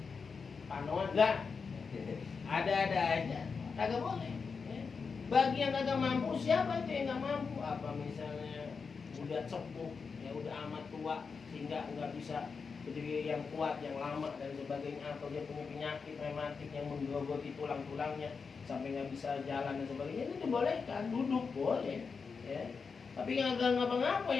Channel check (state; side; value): quieter; right; 5.3 dB